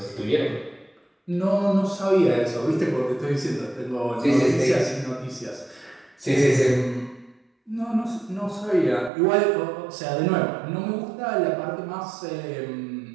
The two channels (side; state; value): left; drops out; at 9.1 s